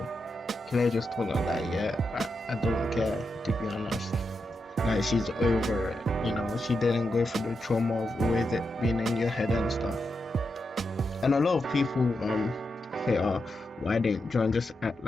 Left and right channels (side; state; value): both; normal; correlation 0.86